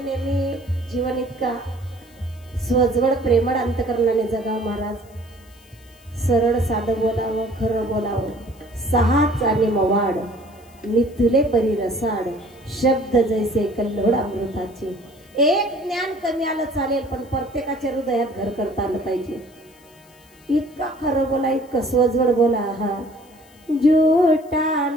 नेहमी जीवन इतका स्वजवळ प्रेमळ अंतकरणाने जगावं महाराज. सरळ साधं बोलावं, खरं बोलावं, सहाच आणि मवाड मिथुले परी रसाड, शब्द जैसे कल्लोळ अमृताचे. एक ज्ञान कमी आलं चालेल, पण प्रत्येकाच्या हृदयात घर करता आलं पाहिजे. इतका खरं बोला, इतकं स्वजवळ बोला. हा झूठा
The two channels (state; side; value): noise; left; hiss, 28 dB below the sound